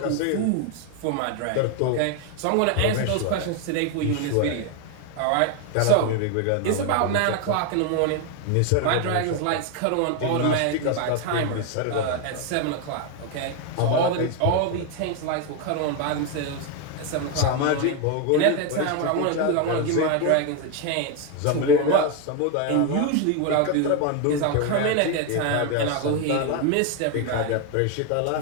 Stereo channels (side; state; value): both; different; correlation 0.01